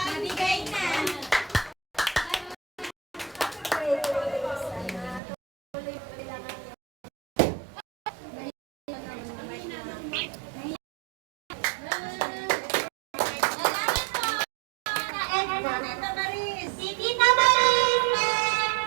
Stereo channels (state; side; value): drops out; left; at 5.2 s